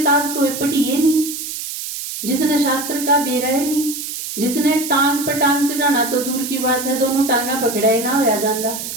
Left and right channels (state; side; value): noise; right; hiss, 7 dB below the sound